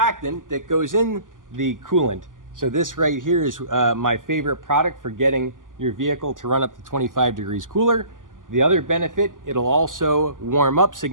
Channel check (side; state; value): left; late; 0.88 ms